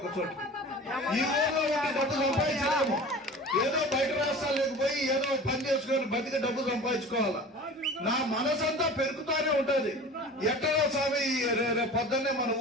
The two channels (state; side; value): normal; both; correlation 0.39